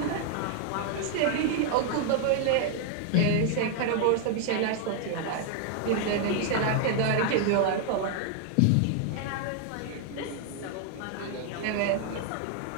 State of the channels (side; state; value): both; different; correlation 0.00